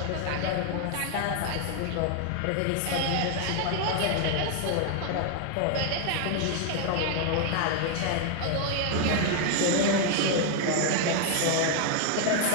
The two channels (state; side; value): different; both; correlation 0.00